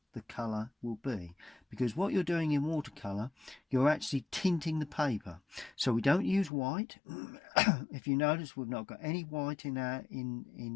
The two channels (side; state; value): right; drops out; at 6.5 s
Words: the colour will be, because what you're doing in watercolour, you're actually tinting the paper. So we don't use white. If you notice, we've not got any white in